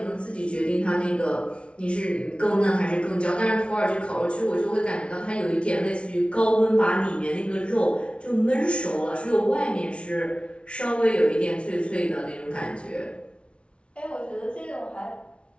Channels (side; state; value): right; late; 0.059 ms